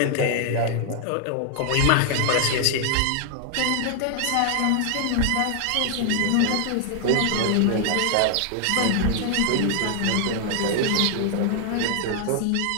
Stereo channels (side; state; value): both; different; correlation 0.00